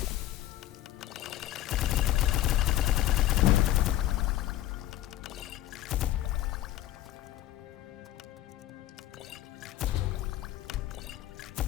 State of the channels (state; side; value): quieter; right; 13.6 dB